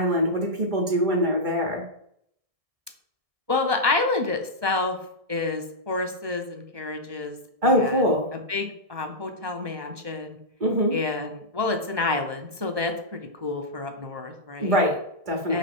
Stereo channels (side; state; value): left; late; 1.2 ms